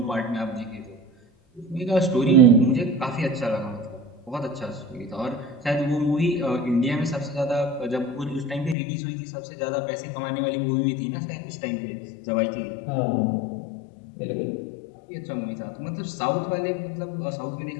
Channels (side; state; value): right; drops out; at 8.8 s